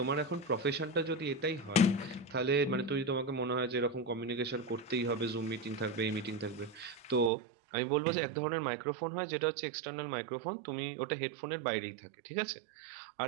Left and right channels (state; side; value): drops out; left; at 7.3 s